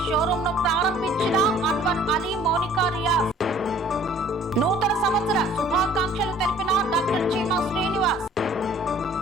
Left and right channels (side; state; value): both; normal; correlation 0.54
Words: షోరూమ్ ను ప్రారంభించిన అన్వర్ అలీ మౌనికా రియాజ్. నూతన సంవత్సర శుభాకాంక్షలు తెలిపిన డాక్టర్ చీమా శ్రీనివాస్.